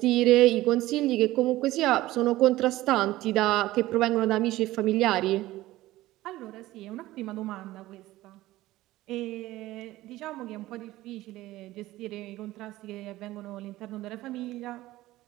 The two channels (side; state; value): left; quieter; 16.8 dB